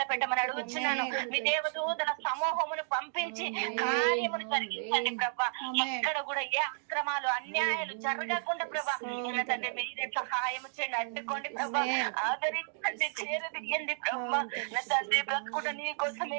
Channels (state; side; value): silent; left; digital silence